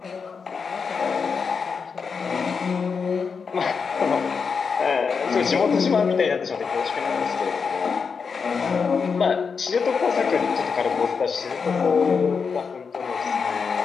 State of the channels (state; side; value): quieter; right; 5.6 dB